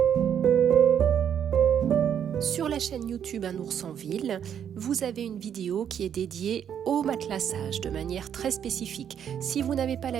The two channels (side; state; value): left; quieter; 8.8 dB